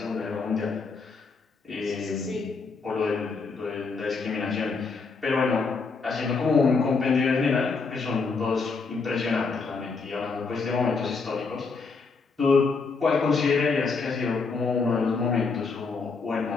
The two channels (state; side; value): quieter; right; 4.6 dB